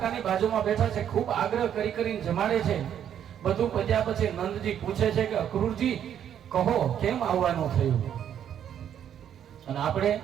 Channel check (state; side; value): quieter; left; 9.5 dB